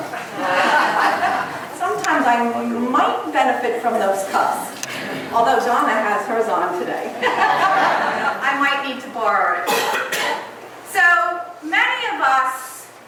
Sometimes I might benefit from those cups, although Donna has hers on today. I might need to borrow it. So many of us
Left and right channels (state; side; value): identical; both; correlation 1.00